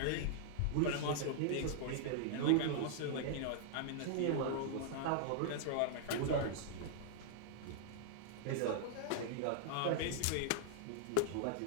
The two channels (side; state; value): both; different; correlation -0.01